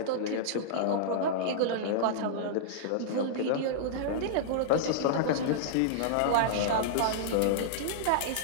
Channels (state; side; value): different; both; correlation -0.02